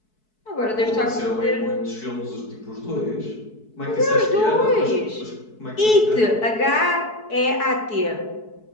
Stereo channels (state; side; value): late; right; 4.6 ms